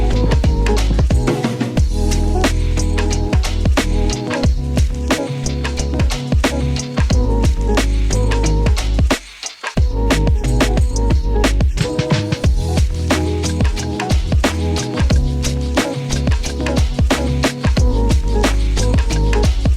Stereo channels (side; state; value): both; identical; correlation 1.00